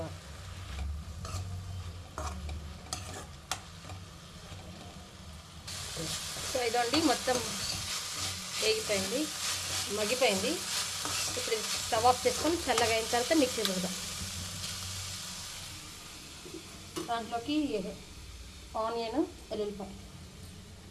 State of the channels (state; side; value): identical; both; correlation 1.00